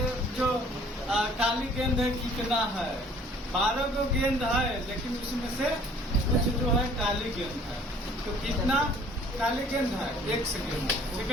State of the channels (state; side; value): normal; both; correlation 0.55